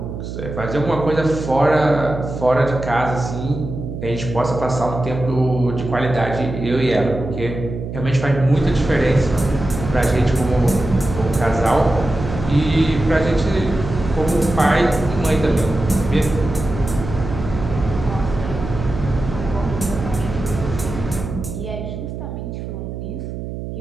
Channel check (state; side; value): noise; right; hum, 7 dB below the sound